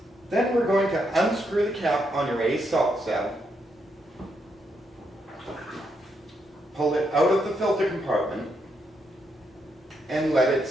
Then we're going to unscrew the cap on your ACE salt cell, pull it out of the filter compartment, and let it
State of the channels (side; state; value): both; normal; correlation 0.79